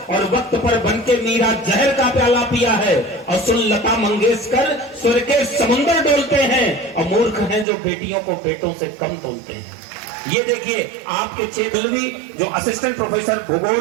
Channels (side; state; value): left; drops out; at 7.7 s